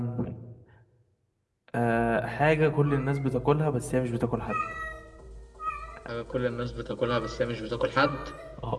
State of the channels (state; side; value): identical; both; correlation 1.00